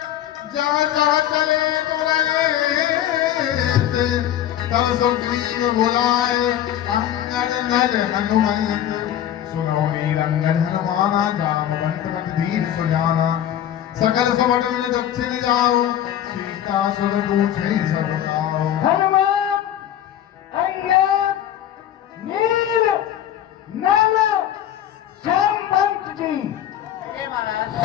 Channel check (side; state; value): right; quieter; 11.2 dB